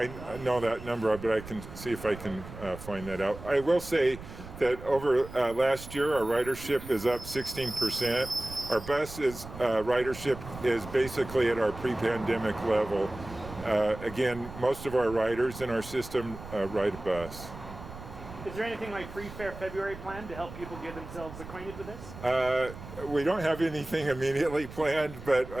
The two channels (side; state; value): right; noise; rumble, 13 dB below the sound